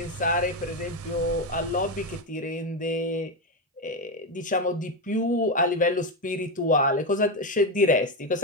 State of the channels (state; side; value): normal; both; correlation 0.10